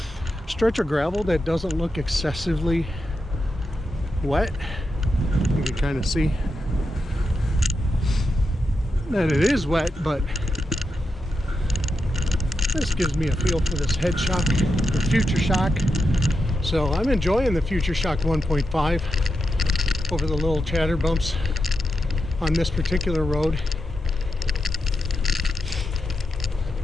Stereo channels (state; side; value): normal; both; correlation 0.87